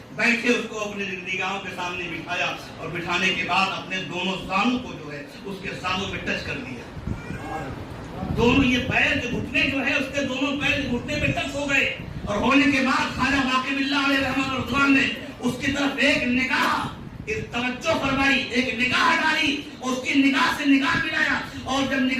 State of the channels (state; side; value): identical; both; correlation 1.00